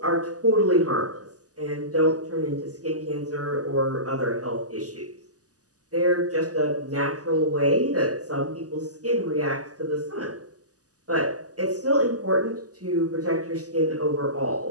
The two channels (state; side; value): late; left; 0.67 ms